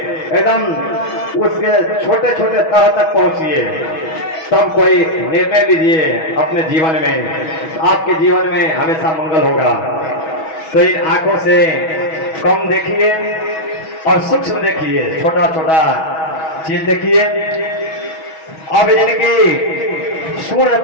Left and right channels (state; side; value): late; right; 6.2 ms